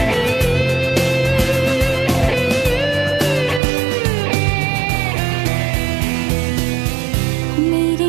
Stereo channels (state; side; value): drops out; left; at 3.6 s